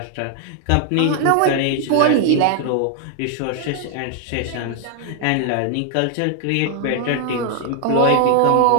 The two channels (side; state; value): both; different; correlation 0.00